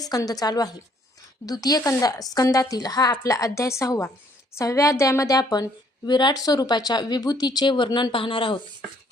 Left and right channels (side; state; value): both; normal; correlation 0.64